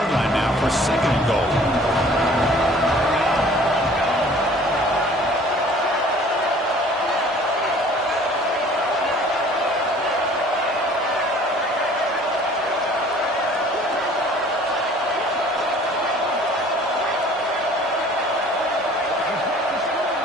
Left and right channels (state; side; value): normal; both; correlation 0.51